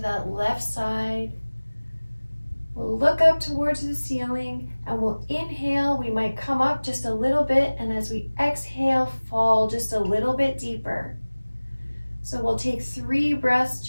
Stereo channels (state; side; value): inverted; both; correlation -1.00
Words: that left side. We'll look up towards the ceiling and we'll inhale. We might come up just a little bit, and as we exhale, fall just a little bit deeper. So we'll take 3 breaths